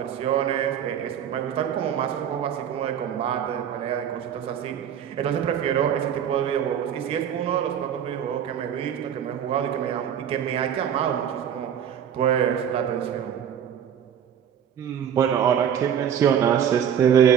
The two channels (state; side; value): quieter; left; 8.9 dB